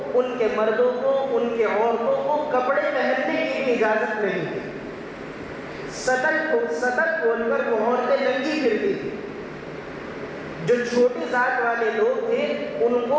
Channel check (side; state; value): both; identical; correlation 1.00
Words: ان کے مردوں کو، ان کے عورتوں کو کپڑے پہننے کی بھی اجازت نہیں تھی، سطر کھول کر وہ عورتیں ننگی پھرتی تھی۔ جو چھوٹی ذات والے لوگ تھے ان کو